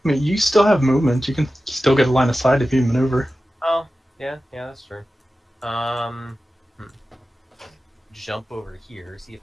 I mean, you still have movement. You can still get a line of sight if you maneuver. Oh, yeah, that's true. Jump over here, see if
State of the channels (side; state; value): both; normal; correlation 0.94